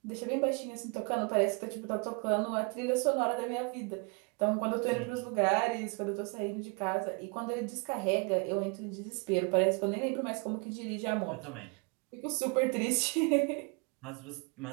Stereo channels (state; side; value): quieter; left; 31.9 dB